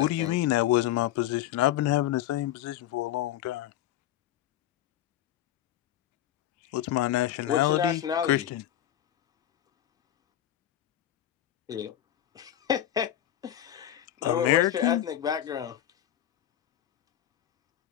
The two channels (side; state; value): right; quieter; 12.1 dB